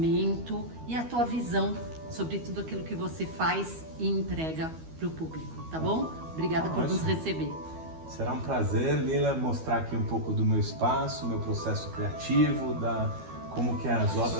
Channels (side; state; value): left; late; 12 ms